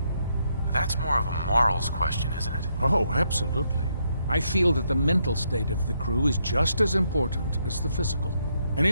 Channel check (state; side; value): inverted; both; correlation -0.77